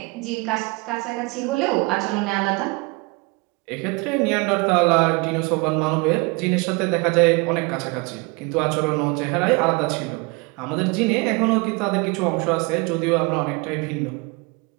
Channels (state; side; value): quieter; left; 27.8 dB